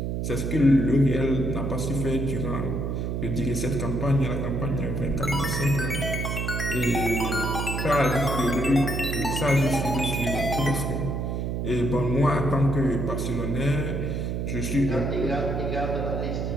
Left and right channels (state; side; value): noise; right; hum, 1 dB below the sound